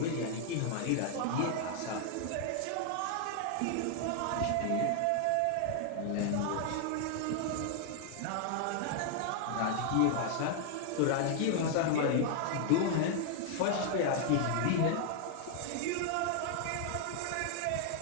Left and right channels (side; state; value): both; different; correlation 0.00